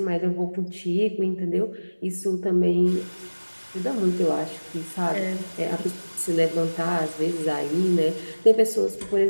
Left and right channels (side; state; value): both; inverted; correlation -1.00